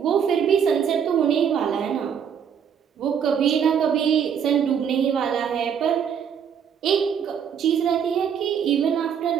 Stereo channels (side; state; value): left; quieter; 7.8 dB